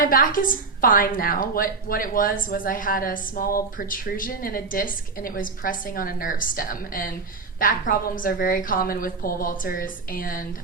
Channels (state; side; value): quieter; left; 4.4 dB